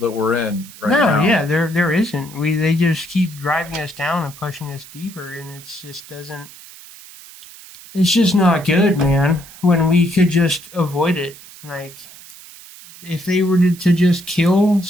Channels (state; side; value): noise; right; hiss, 19 dB below the sound